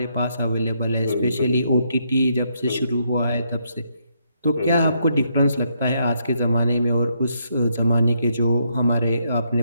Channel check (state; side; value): inverted; both; correlation -0.76